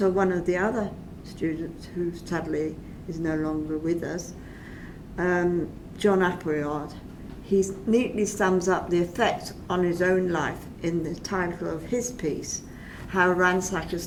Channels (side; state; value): both; identical; correlation 1.00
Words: one of the other students who sadly is no longer with us, John Appleyard. He neatly sums up the effect on his own life in the title of his piece, How